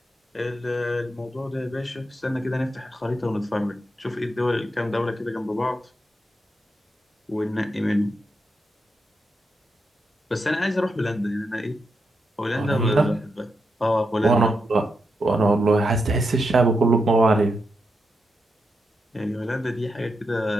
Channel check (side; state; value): both; normal; correlation 0.84